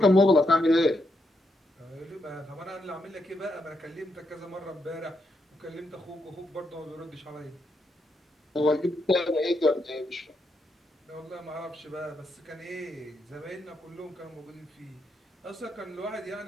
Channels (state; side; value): normal; both; correlation 0.80